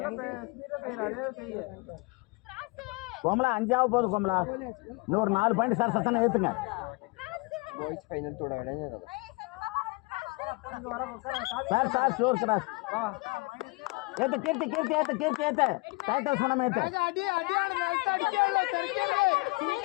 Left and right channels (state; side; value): quieter; right; 26.6 dB